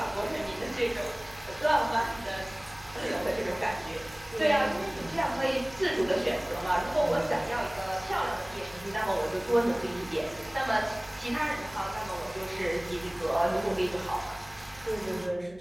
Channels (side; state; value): right; noise; hum, 23 dB below the sound